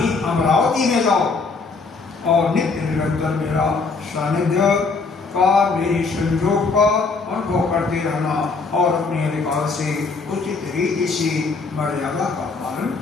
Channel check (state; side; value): quieter; right; 4.3 dB